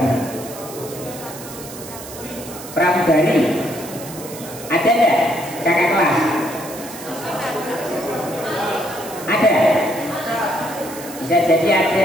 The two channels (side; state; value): right; noise; hiss, 14 dB below the sound